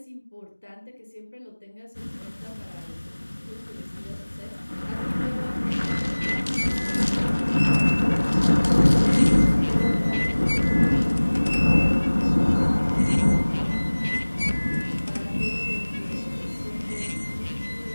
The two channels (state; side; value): inverted; both; correlation -1.00